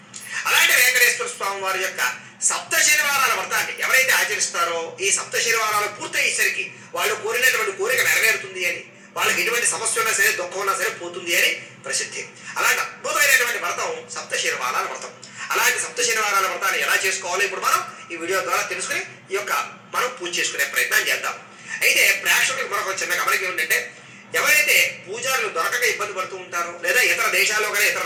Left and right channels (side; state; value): both; identical; correlation 1.00